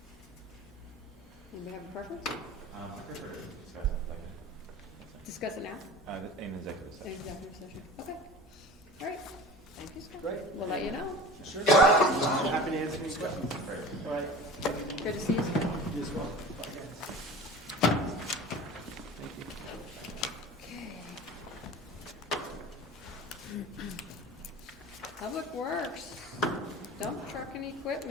Anybody have a preference? I prefer to discuss it later. Discuss it now? In executive In session. executive session. Okay. All right. Thank you, Scott. Great. We'll let you know. Sure. Happy to answer any questions. All right. Good to see you, Scott. You as well. Bye, guys. Thank you. Okay. Public Works, dump truck and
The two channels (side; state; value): both; normal; correlation 0.37